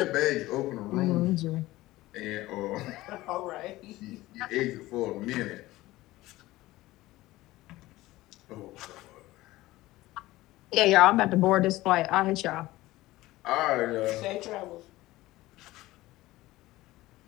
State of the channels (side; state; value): right; quieter; 17.8 dB